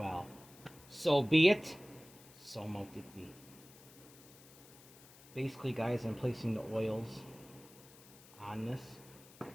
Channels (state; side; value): noise; left; hiss, 21 dB below the sound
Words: So be it, so mote it be. Basically, guys, I'm placing the oils on this.